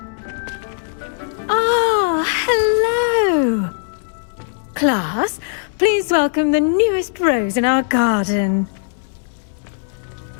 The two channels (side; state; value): right; silent; digital silence